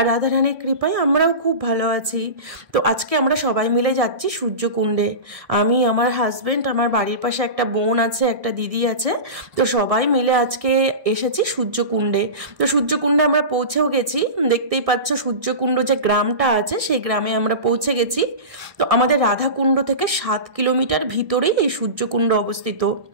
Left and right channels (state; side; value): late; left; 1.6 ms